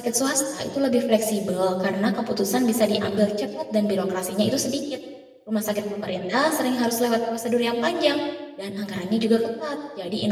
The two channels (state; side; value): identical; both; correlation 1.00